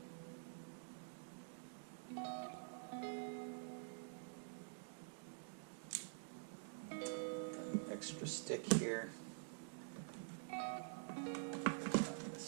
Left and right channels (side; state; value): left; silent; digital silence